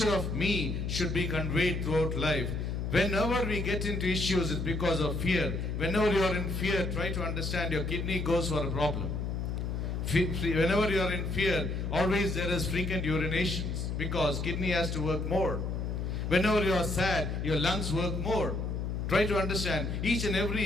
of me should be conveyed throughout life. Whenever we get into issues, it's because of fear. Whenever you are in fear, try to understand your kidney goes for a problem. Whenever you are in fear, always there is frequent urinations because kidney has to work more. Whenever you are sad, your lungs work more. Try to understand each and every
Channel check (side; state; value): left; noise; hum, 2 dB below the sound